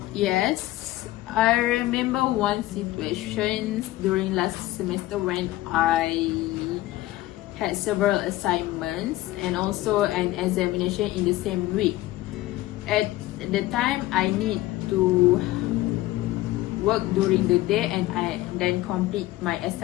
Yes, I remember one situation during last semester when I had several assignments and also an examination in the same week. At the time, I need to work during the day and I then complete my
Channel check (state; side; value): quieter; right; 16.8 dB